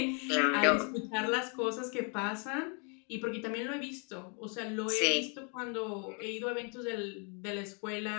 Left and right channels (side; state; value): right; quieter; 36.8 dB